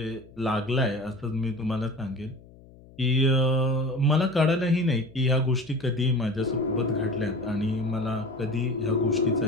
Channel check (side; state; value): left; noise; hum, 23 dB below the sound